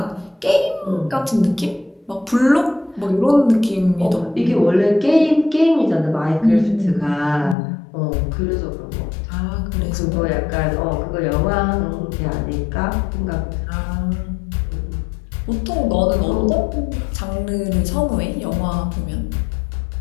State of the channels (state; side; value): drops out; right; at 7.6 s